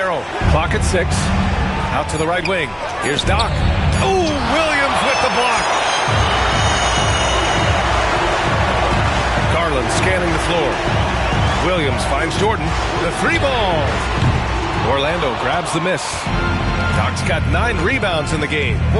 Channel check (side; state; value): both; identical; correlation 1.00